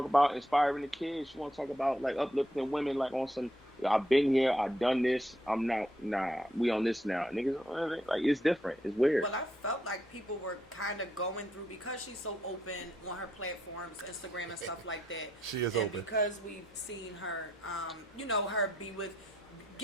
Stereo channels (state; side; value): normal; both; correlation 0.76